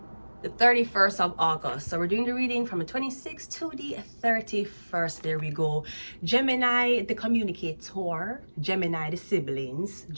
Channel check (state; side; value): inverted; both; correlation -1.00